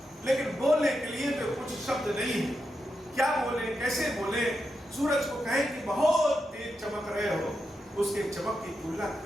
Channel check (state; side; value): normal; both; correlation 0.86